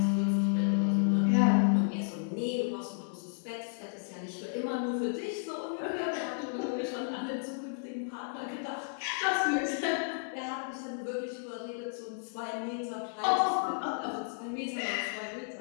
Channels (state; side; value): silent; right; digital silence